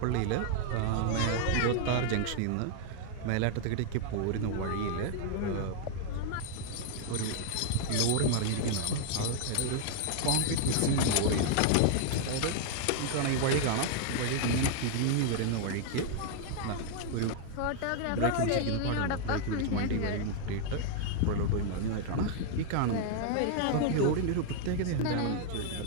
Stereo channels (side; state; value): both; different; correlation 0.00